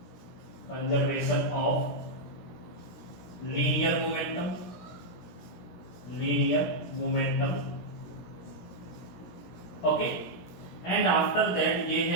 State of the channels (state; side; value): late; right; 17 ms